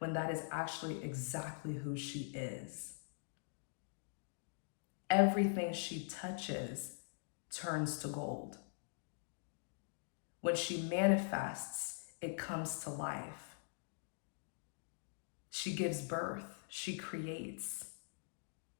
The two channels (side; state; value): right; silent; digital silence